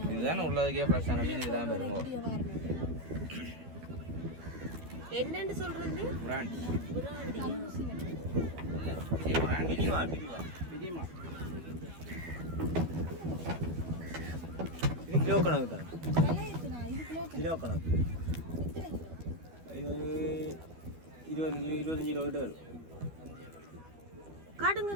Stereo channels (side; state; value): left; late; 12 ms